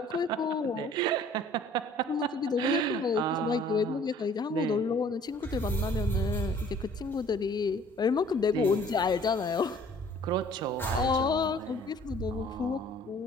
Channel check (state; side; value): normal; both; correlation 0.54